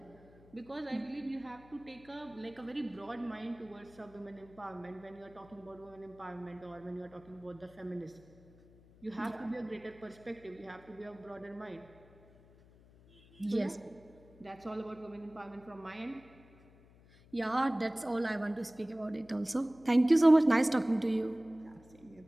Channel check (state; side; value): noise; left; hum, 25 dB below the sound